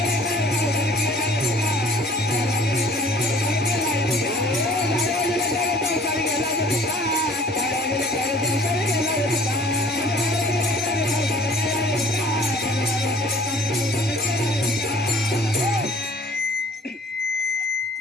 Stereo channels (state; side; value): normal; both; correlation 0.53